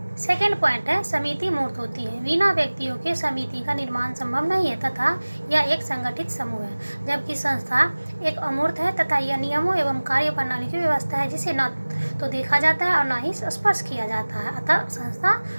सेकेंड पॉइंट है, समिति मूर्त होती है। बिना व्यक्तियों के समिति का निर्माण संभव नहीं है तथा यह एक संगठित समूह है, जबकि संस्था एक अमूर्त है तथा यह नियमों एवं कार्य प्रणाली की व्यवस्था है जिसे न तो देखा जाता है और न ही स्पर्श किया जाता है, अतः संस्था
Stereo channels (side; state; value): both; inverted; correlation -1.00